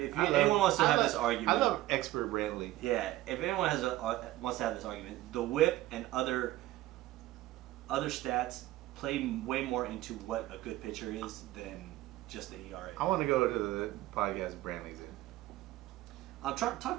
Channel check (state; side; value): quieter; left; 16.1 dB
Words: wants to have this argument. I love expert Brantley. Yeah, if anyone wants to have this argument, the WHIP and other stats play way more into what a good pitcher is than just the ERA. I want to go to the podcast Brantley's in. I'll talk